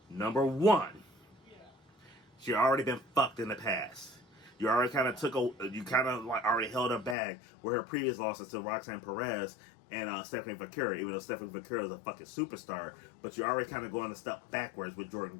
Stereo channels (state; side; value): drops out; right; at 7.2 s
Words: Number 1, she already been fucked in the past. You already kind of already held her back with her previous losses to Roxanne Perez and Stephanie Vaquero, even though Stephanie Vaquero is a fucking superstar. But you're already kind of going a step backwards with Jordynne